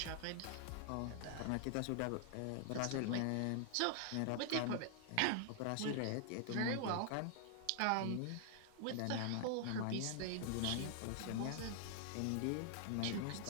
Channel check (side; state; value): both; different; correlation 0.00